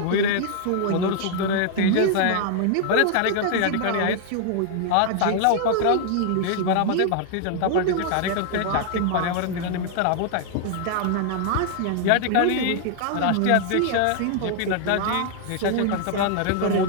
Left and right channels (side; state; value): both; different; correlation 0.00